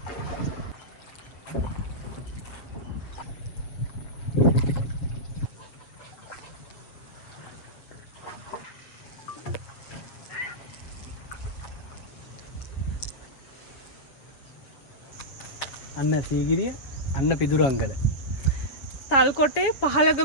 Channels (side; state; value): right; late; 7.2 ms